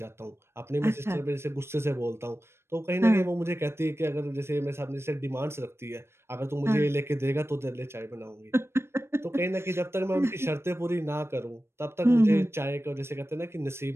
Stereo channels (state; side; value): late; left; 0.12 ms